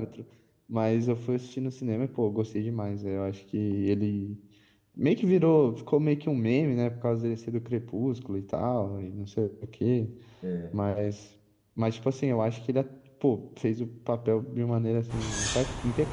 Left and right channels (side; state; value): both; identical; correlation 1.00